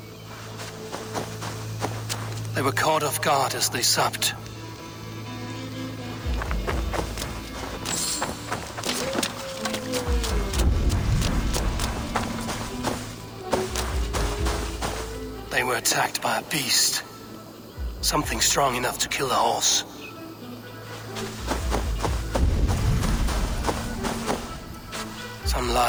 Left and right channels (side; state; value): both; identical; correlation 1.00